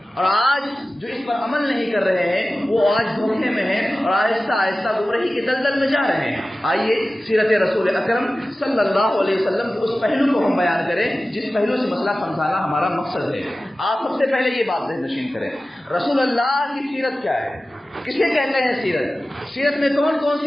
اور آج جو اس پر عمل نہیں کر رہے ہیں وہ آج دھوکے میں ہیں اور آہستہ آہستہ گمراہی کے دلدل میں جا رہے ہیں۔ آئیے سیرت رسول اکرم صلی اللہ علیہ وسلم کے اس پہلو کو ہم بیان کریں جس پہلو سے مسئلہ سمجھانا ہمارا مقصد ہے۔ آپ سب سے پہلے یہ بات ذہن نشین کریں، رسول اللہ کی سیرت کیا ہے، کسے کہتے ہیں سیرت؟ سیرت میں کون کون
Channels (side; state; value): both; normal; correlation 0.96